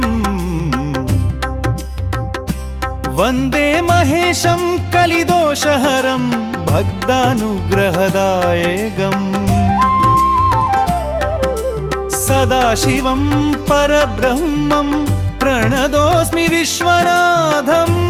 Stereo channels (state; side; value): identical; both; correlation 1.00